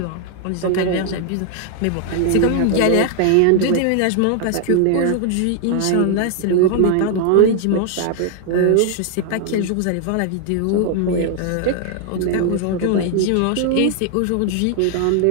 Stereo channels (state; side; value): different; both; correlation 0.00